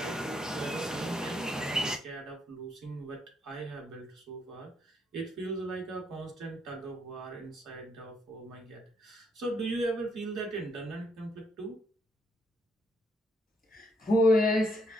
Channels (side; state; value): both; normal; correlation 0.74